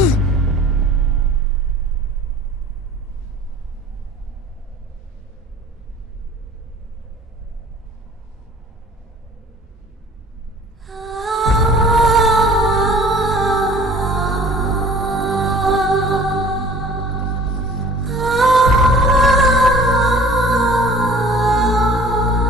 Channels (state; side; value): normal; both; correlation 0.48